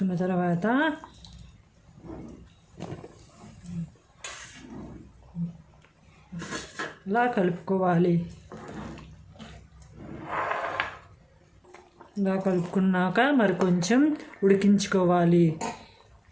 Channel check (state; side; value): identical; both; correlation 1.00